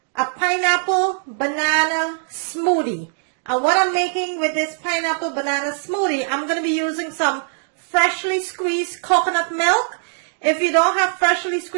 a pineapple banana smoothie. And what I'm making with this pineapple banana smoothie, I'm going to be using some freshly squeezed coconut milk. If you don't have freshly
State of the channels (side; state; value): left; silent; digital silence